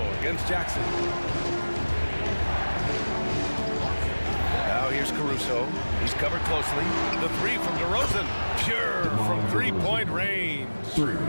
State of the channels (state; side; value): inverted; both; correlation -1.00